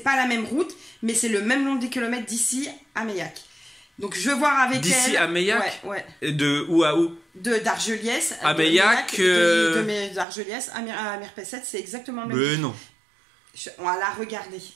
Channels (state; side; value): drops out; left; at 10.2 s